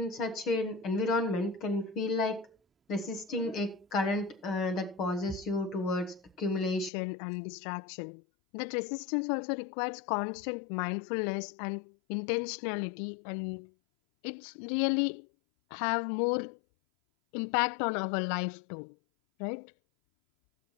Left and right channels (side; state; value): right; drops out; at 6.9 s